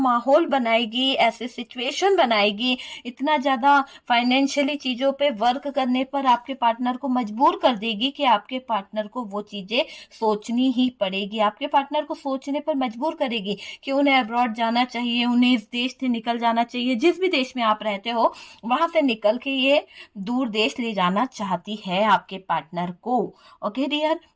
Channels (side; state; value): both; identical; correlation 1.00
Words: बनाएगी, ऐसे सिचुएशन बनाएगी, इतना ज्यादा फाइनेंशियली चीजों पे वर्क करने पर आपके पार्टनर को मजबूर कर देगी कि आपके पार्टनर को वो चीजें सोचनी ही पड़ेगी, आपके पार्टनर को सोचने पर मजबूर करेगी कि उन्हें अब्रॉड जाना चाहिए, उन्हें इस देश से निकल जाना चाहिए, जिस भी देश में आप रहते हो वहां से निकल के ये दूर देश ले जाना चाहती है आपके पार्टनर को। ओके डियर,